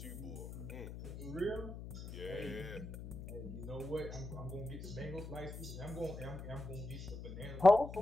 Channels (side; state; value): left; noise; hum, 9 dB below the sound